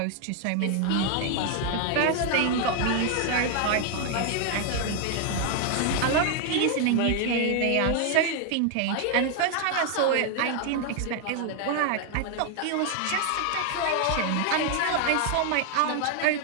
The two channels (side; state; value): both; different; correlation 0.00